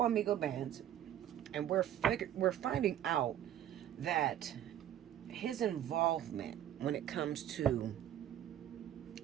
Migo Bands, and we're finding out that his involvement when it comes to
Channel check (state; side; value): quieter; left; 11.2 dB